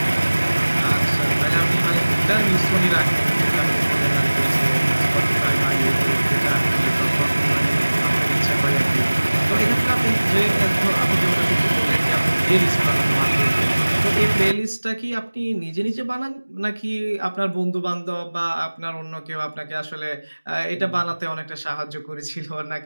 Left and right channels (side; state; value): both; inverted; correlation -1.00